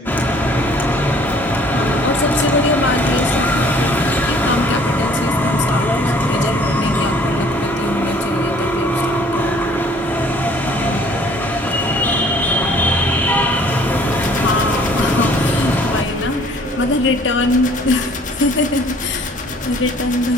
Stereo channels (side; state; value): both; normal; correlation 0.56